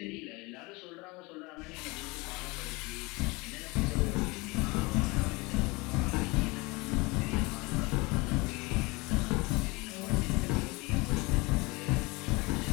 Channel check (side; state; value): right; quieter; 25.1 dB